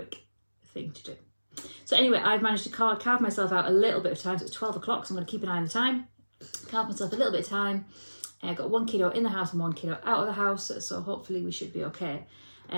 thing to do. So anyway, I've managed to carve myself out a little bit of time. So it's 12 o'clock, so I'm going to keep an eye on the time. Carve myself a little bit of time. I've got 1 kiddo in the house and 1 kiddo out of the house, so hopefully we should be okay.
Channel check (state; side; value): inverted; both; correlation -1.00